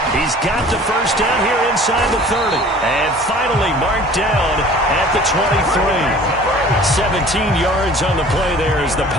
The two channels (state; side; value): normal; both; correlation 0.47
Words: He's got the first down here inside the 30. And finally marked down at the 23. 17 yards on the play there as the